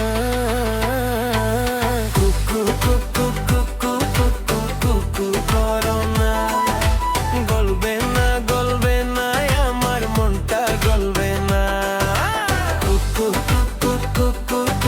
কুকু কুকু কুকু কুকু কুকু করো না, গলবে না গলবে না আমার মনটা গলবে না। কুকু কুকু কুকু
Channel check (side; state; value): both; identical; correlation 1.00